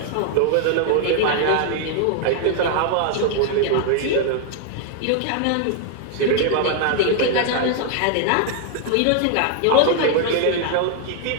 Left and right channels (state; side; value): different; both; correlation 0.00